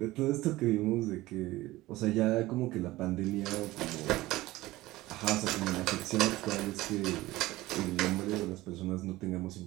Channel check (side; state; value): left; quieter; 18.1 dB